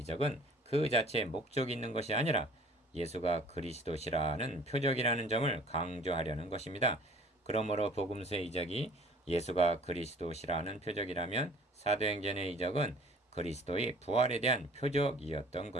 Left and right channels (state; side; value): normal; both; correlation 0.51